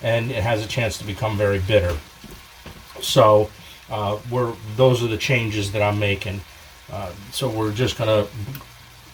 and it has a chance to become very bitter. So those are the changes that I'm making. So we're just gonna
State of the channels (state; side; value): identical; both; correlation 1.00